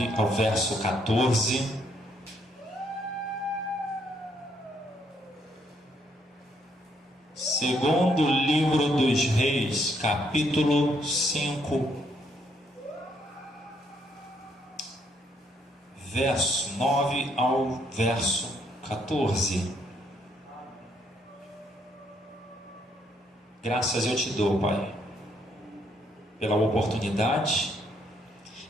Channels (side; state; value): both; normal; correlation 0.72